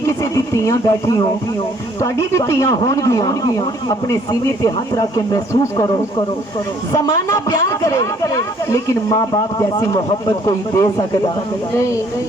दी तियां बैठी हो तुहाडी भी तियां होणगियां अपने सीने ते हाथ रख के महसूस करो जमाना प्यार करे लेकिन माँ बाप जैसी मोहब्बत कोई दे सकता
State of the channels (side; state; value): both; normal; correlation 0.61